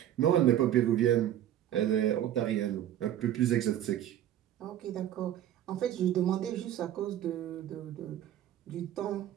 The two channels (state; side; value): quieter; left; 11.5 dB